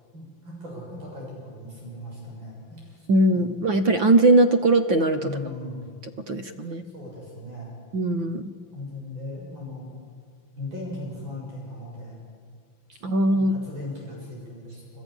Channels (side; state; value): left; late; 5.9 ms